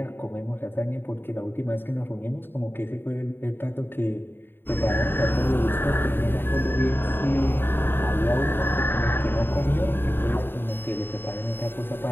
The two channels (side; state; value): right; late; 0.10 ms